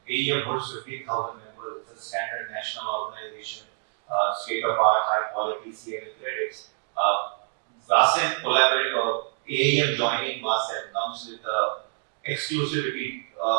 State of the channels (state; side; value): silent; left; 56 dB below the other